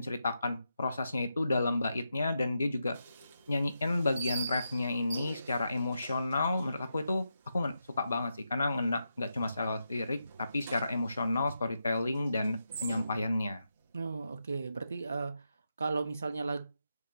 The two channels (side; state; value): both; inverted; correlation -0.85